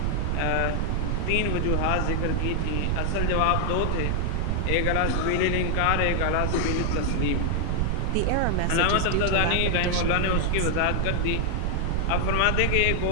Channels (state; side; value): different; both; correlation 0.00